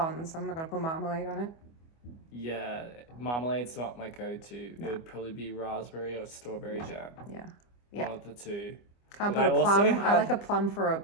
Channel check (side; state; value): right; late; 25 ms